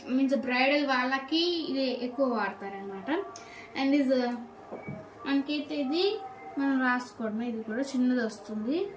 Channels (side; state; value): both; identical; correlation 1.00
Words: బ్రైడల్ వాళ్ళకి ఇది ఎక్కువ వాడతారనమాట. అండ్ మనకైతే ఇది మనం రాసుకోవడమే. ఇది కూడా చిన్నది వస్తుంది,